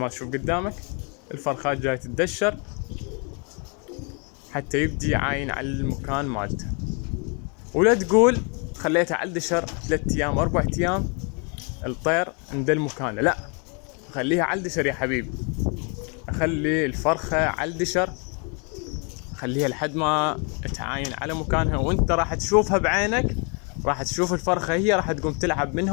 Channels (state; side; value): quieter; right; 35.8 dB